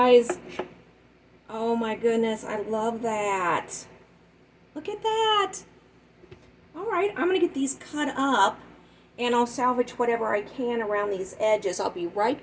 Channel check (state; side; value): identical; both; correlation 1.00